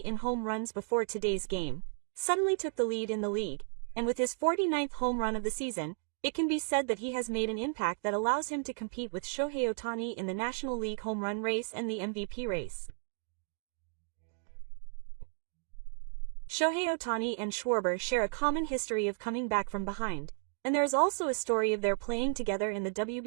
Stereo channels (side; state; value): left; silent; 55 dB below the other